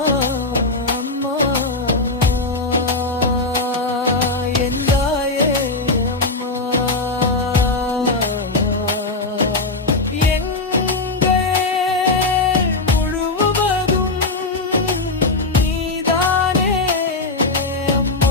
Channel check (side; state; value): right; quieter; 3.3 dB